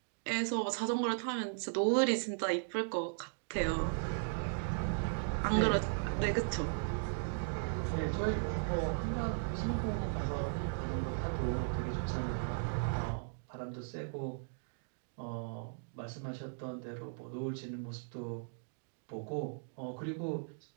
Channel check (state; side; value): silent; left; digital silence